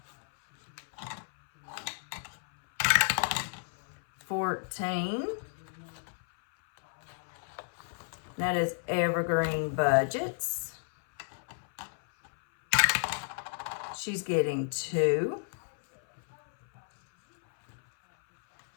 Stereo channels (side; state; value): right; silent; 57 dB below the other